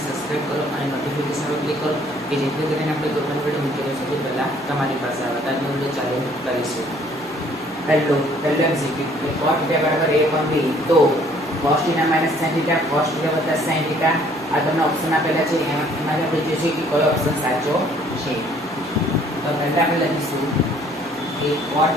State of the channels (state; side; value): noise; right; hum, 29 dB below the sound